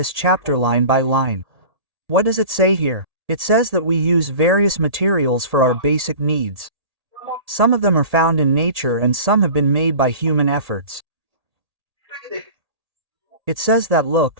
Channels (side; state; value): left; late; 1.8 ms